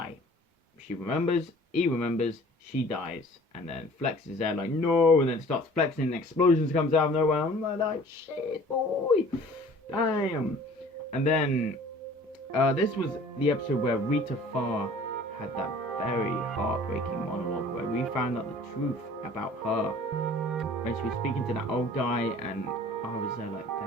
If she remembers, he remembers, she dies. And then Flex is there like, no, and then starts flexing and explosions comes out of nowhere. I'm like, shit, boy, damn. And then this was the episode where Rita Farr had that very heartbreaking monologue where we found out the truth about her when she was speaking to that old guy, and I was there like,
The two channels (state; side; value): normal; both; correlation 0.49